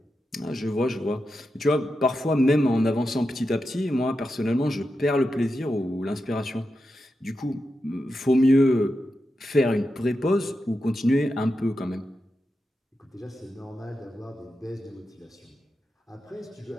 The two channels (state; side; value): normal; both; correlation 0.89